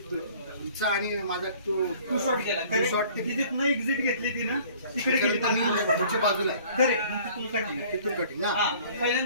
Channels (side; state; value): both; inverted; correlation -0.52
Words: तुमचा आणि माझा तो टू शॉट गेला. टू शॉट ते तिथे न एक्झिट घेतली ती ना तिकडे गेली. तुमच्या बाजूला आहे. खरे मग तिथून कटिंग. तिथून कटिंग ना. हा